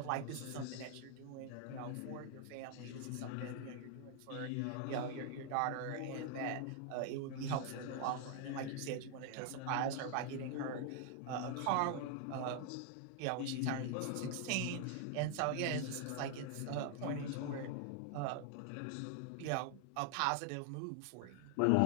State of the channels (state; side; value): different; both; correlation 0.00